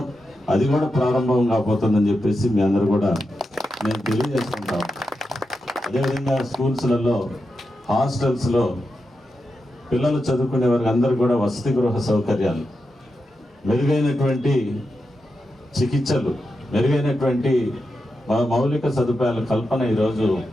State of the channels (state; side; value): normal; both; correlation 0.88